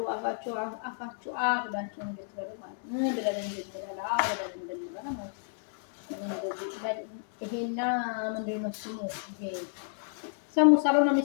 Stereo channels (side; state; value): right; silent; digital silence